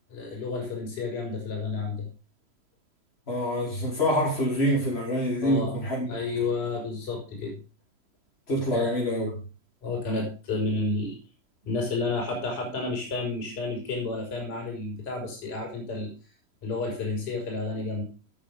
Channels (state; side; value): late; right; 3.0 ms